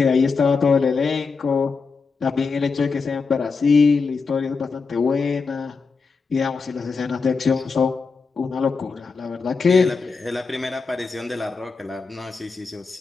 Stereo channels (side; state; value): right; quieter; 4.7 dB